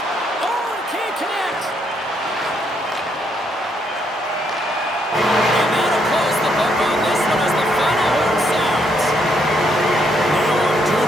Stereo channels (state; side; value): normal; both; correlation 0.74